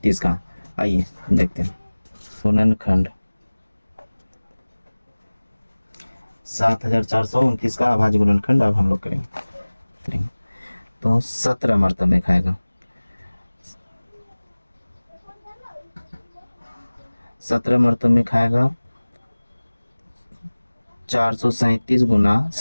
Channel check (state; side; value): inverted; both; correlation -1.00